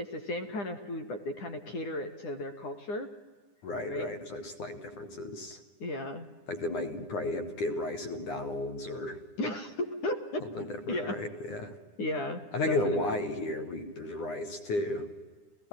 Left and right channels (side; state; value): right; late; 10 ms